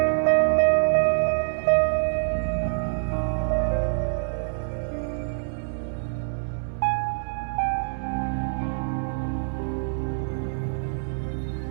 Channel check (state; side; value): silent; left; 60 dB below the other